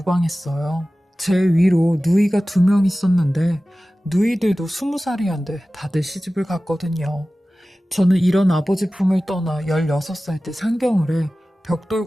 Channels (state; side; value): normal; both; correlation 0.96